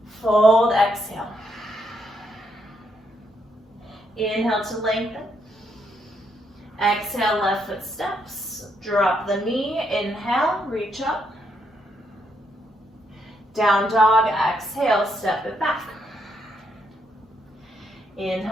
Fold, exhale. Inhale to lengthen. Exhale, left foot steps. Drop the knee. Inhale, reach up. Down dog, exhale, step it back.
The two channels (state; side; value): normal; both; correlation 0.77